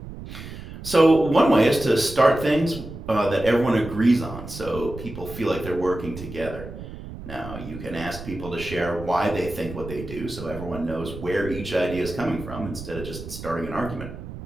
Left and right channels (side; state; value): right; noise; rumble, 12 dB below the sound